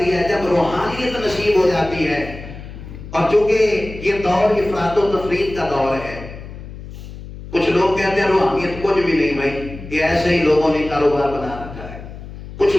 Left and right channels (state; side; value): noise; left; hum, 13 dB below the sound